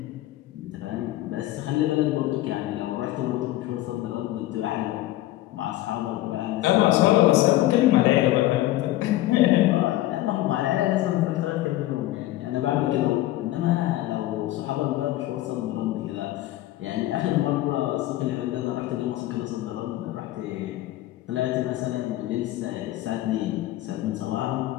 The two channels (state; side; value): quieter; right; 15.7 dB